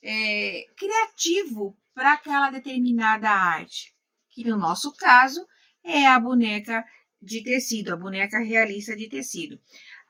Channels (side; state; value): both; identical; correlation 1.00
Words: criativo para aquela determinada arte, que no nosso caso é a boneca de tecido, a boneca realista de tecido.